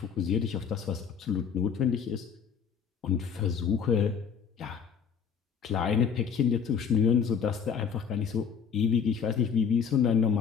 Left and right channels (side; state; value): right; quieter; 6.9 dB